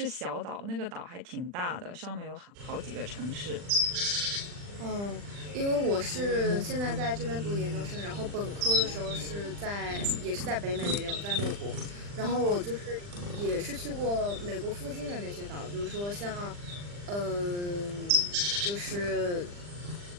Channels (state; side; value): late; left; 40 ms